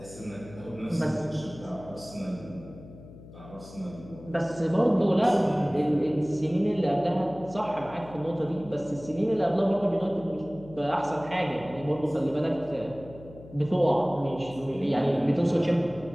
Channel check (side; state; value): left; noise; hum, 18 dB below the sound